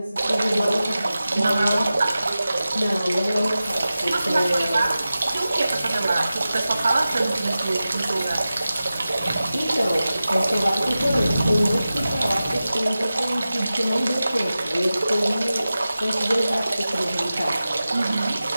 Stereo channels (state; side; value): inverted; both; correlation -0.94